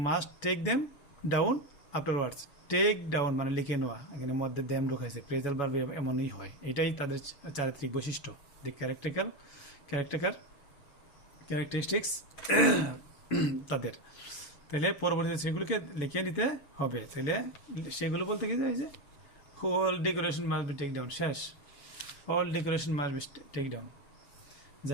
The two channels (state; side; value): late; right; 7.1 ms